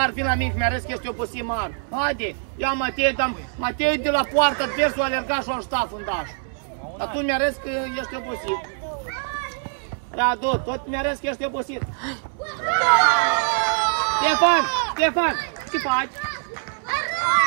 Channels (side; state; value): left; silent; 63 dB below the other